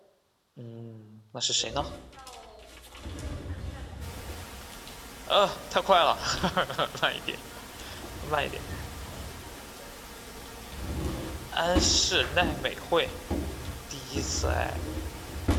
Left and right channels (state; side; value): identical; both; correlation 1.00